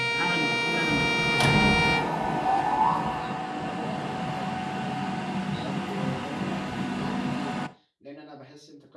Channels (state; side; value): identical; both; correlation 1.00